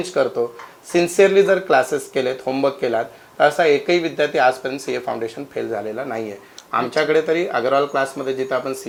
करतो, सिन्सिअरली जर क्लासेस केलेत, होमवर्क केलात, तर असा एकही विद्यार्थी आजपर्यंत सीए फाउंडेशन फेल झालेला नाहीये. आमच्याकडे तरी अगरवाल क्लासमध्ये जिथे आपण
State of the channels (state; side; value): identical; both; correlation 1.00